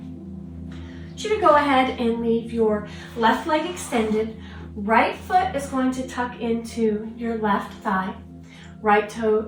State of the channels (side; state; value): both; identical; correlation 1.00